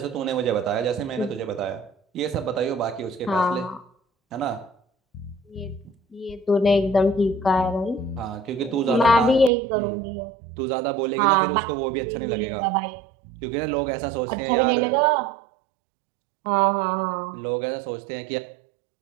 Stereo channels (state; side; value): drops out; left; at 9.5 s